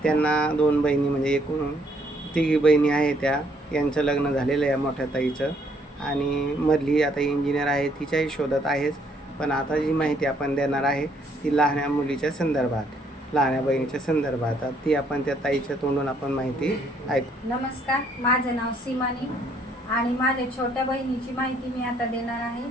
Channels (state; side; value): normal; both; correlation 0.67